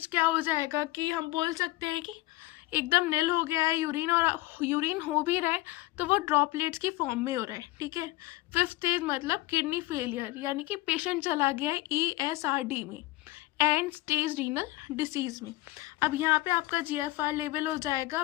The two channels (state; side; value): quieter; right; 18.6 dB